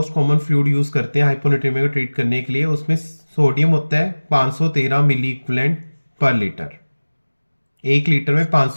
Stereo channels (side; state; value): both; inverted; correlation -1.00